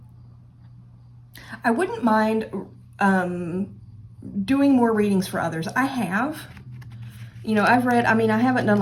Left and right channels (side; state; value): both; identical; correlation 1.00